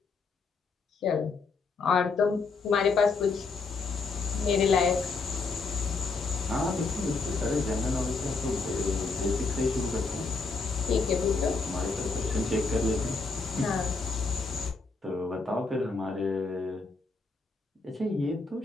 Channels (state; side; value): quieter; right; 4.2 dB